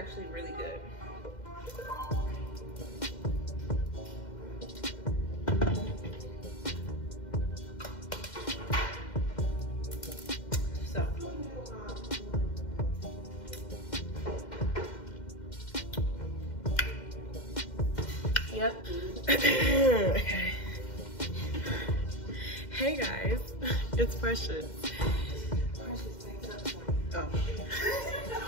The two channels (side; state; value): right; late; 2.1 ms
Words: really good. So, yep. Okay. Hey guys, it's Precious. Oh.